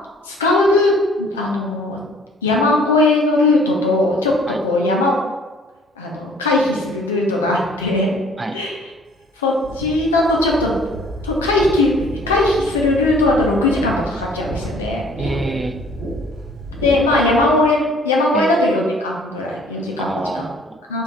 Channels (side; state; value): both; normal; correlation 0.55